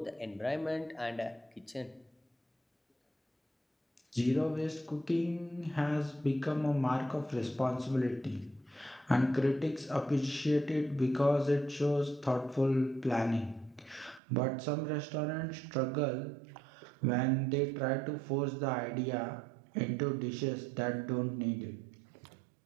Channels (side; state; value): left; drops out; at 14.2 s